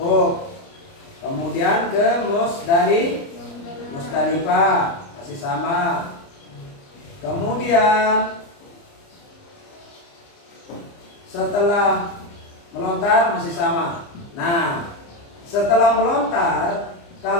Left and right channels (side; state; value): right; late; 29 ms